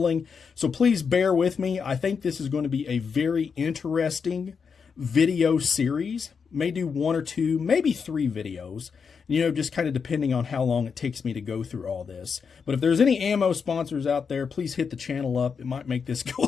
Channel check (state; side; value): quieter; right; 5.9 dB